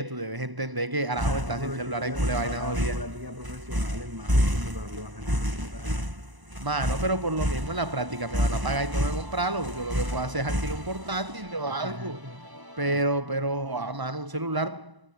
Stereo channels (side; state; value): left; late; 1.0 ms